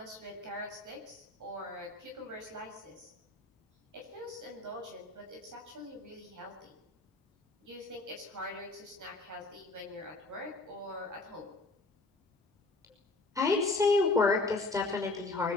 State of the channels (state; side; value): quieter; right; 3.3 dB